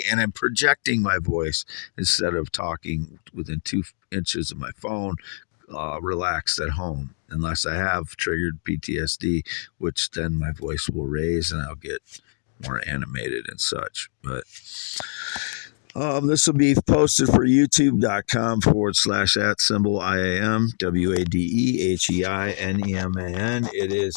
and I'm projecting my voice instead of talking within 2 inches of my phone, relaxed at home, unless I have triggered PTSD, which then my voice will raise and I'll get more animated and such. But this will be posted for youtube.com/@IAM WADEHEINEMAN. It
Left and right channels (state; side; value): silent; right; digital silence